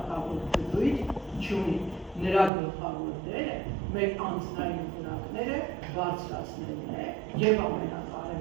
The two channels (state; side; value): drops out; left; at 2.5 s